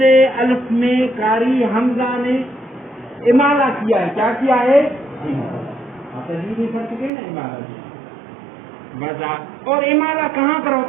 الف میں قاری حمزہ نے امالہ کیا ہے. کیا کیا ہے؟ اور امالہ کہاں پر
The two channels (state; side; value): drops out; left; at 7.1 s